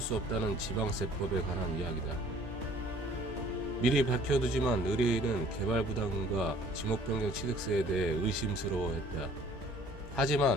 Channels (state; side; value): normal; both; correlation 0.54